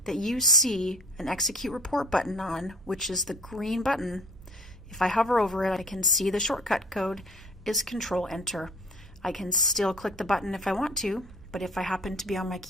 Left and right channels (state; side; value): normal; both; correlation 0.48